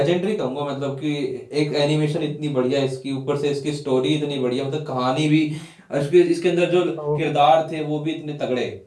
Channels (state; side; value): identical; both; correlation 1.00